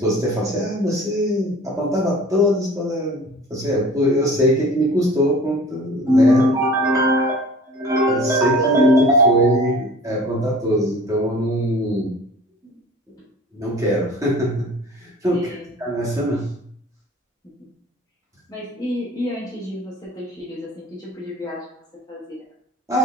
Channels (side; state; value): both; normal; correlation 0.45